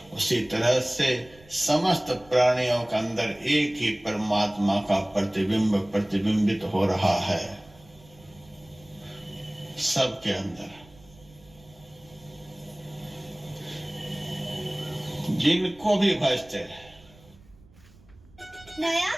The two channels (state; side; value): noise; right; rumble, 26 dB below the sound